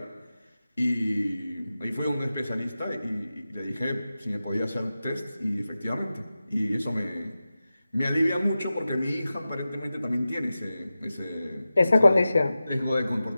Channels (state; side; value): inverted; both; correlation -0.94